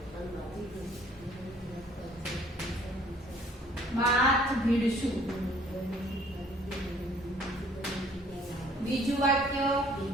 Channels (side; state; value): both; normal; correlation 0.58